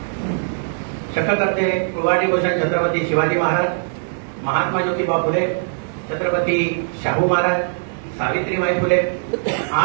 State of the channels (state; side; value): silent; left; digital silence